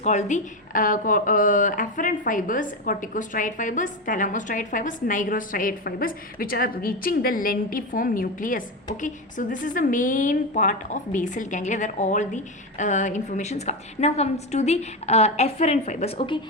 the afferent fibers, corticostriate fibers, thalamostriate fibers, nigrostriate fibers, which are reaching the lentiform nucleus. Okay, so this is the main part of basal ganglia where all the informations come. Now comes to the afferent fibers. Okay,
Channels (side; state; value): both; normal; correlation 0.14